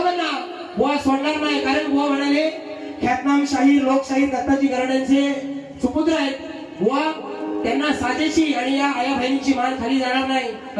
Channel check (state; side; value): identical; both; correlation 1.00